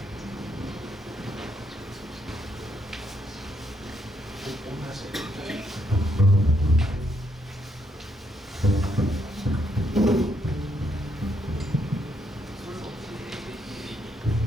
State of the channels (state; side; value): normal; both; correlation 0.75